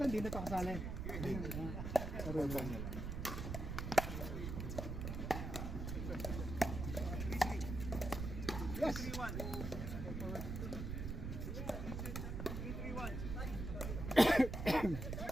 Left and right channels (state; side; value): noise; right; rumble, 4 dB below the sound